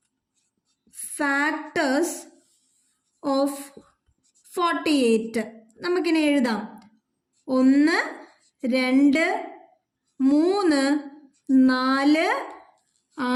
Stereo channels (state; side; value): identical; both; correlation 1.00